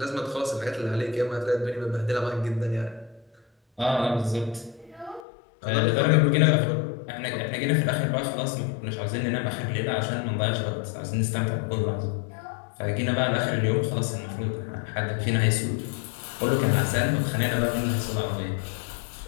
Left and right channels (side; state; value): right; drops out; at 5.2 s